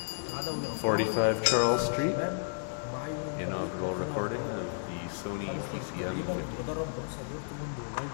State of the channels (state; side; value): silent; right; digital silence